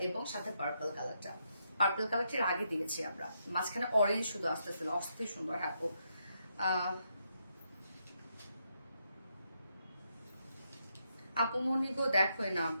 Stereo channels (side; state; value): both; inverted; correlation -0.80